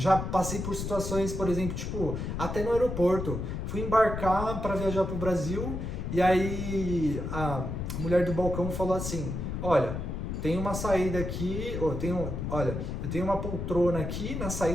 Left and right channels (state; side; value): noise; left; rumble, 4 dB below the sound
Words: passei por situações, por exemplo, tipo, até no aeroporto. Fui embarcar para viajar para o Brasil e aí a mulher do balcão falou assim, olha, tem uma saída aqui, eu tenho uma poltrona aqui na